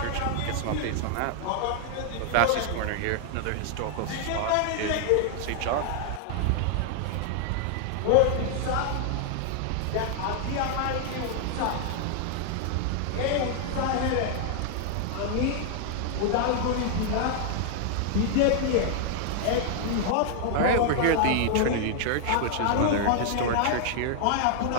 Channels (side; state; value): both; different; correlation 0.00